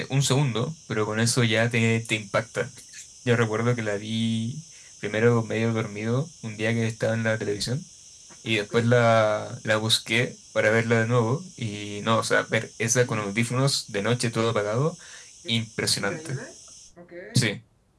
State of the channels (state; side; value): identical; both; correlation 1.00